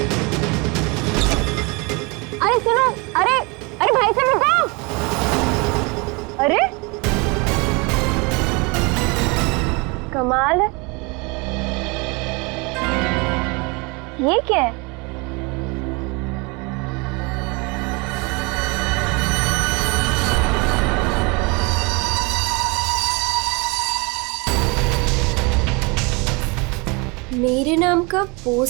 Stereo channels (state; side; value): quieter; left; 28.6 dB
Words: अरे सुनो, अरे अरे भाई साहब रुको। अरे कमाल है, ये क्या है? मेरे नाम का